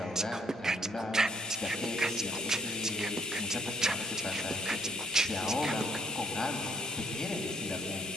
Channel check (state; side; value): normal; both; correlation 0.64